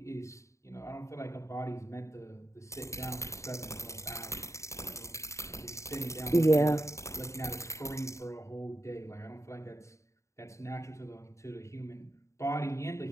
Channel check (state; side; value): late; right; 0.14 ms